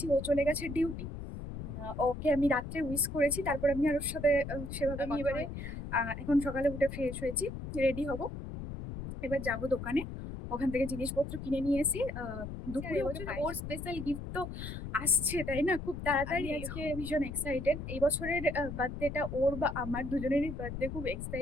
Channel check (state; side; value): noise; left; rumble, 7 dB below the sound